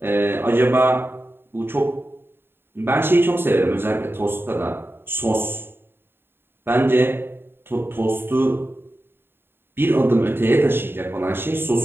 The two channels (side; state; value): left; late; 0.11 ms